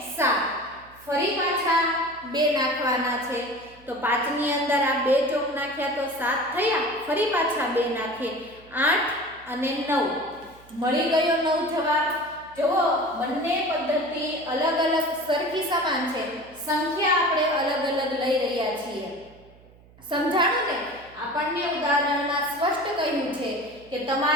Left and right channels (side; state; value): right; noise; hum, 25 dB below the sound